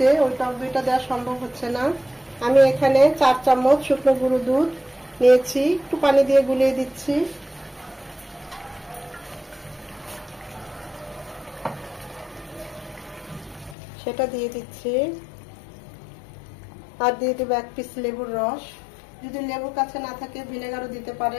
ওই টক দইটা দেওয়া সম্ভব হচ্ছে না। আমি এখানে 4 চামচ শুকনো গুঁড়ো দুধ নিয়েছি, একটু পানি দিয়ে গুলিয়ে দিচ্ছি। সেটা দিয়ে দিচ্ছি, আর দিয়ে দেবো 1 পিস লেবুর রস। যদি লেবুর কাছে না থাকে ভিনেগারও দিতে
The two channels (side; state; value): right; drops out; at 13.8 s